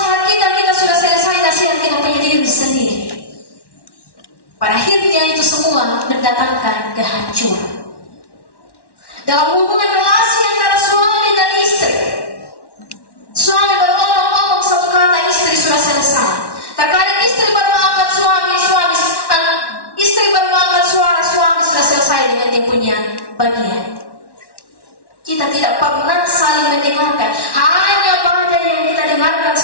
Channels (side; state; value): right; late; 1.1 ms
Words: kita sudah selesai nasihat kita punya diri sendiri. Pada akhirnya itu semua mendatangkan kehancuran. Dalam hubungan relasi antara suami dan istri, suami baru ngomong satu kata, istri sudah selesai. Terkadang istri baru angkat istri baru angkat suara, suami sudah selesai dengan dia punya bagian. Kita tidak pernah saling mendengarkan, hanya badai yang kita dengarkan